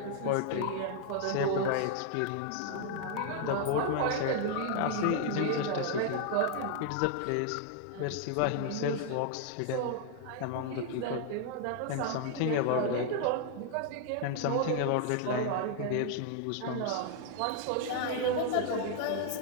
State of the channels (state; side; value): different; both; correlation 0.00